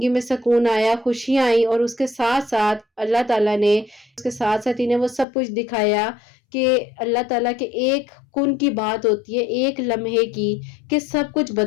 میں سکون آیا، خوشیاں آئیں، اور اس کے ساتھ ساتھ اللہ تعالیٰ نے اس کے ساتھ ساتھ انہیں وہ سب کچھ دکھایا کہ اللہ تعالیٰ کے ایک کن کی بات ہوتی ہے، ایک لمحے کی، کہ سب کچھ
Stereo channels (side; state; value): right; drops out; at 5.2 s